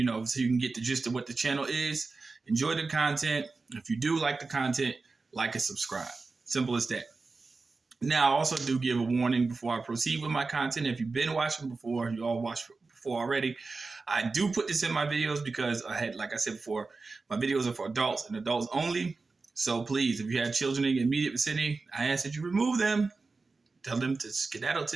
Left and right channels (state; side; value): quieter; left; 3.9 dB